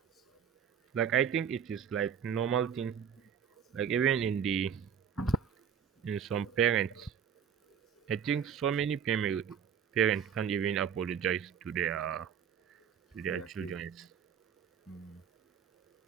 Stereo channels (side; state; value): left; quieter; 7.9 dB